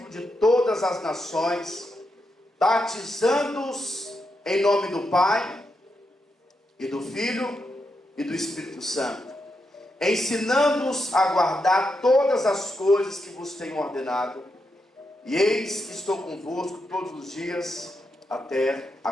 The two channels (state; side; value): normal; both; correlation 0.84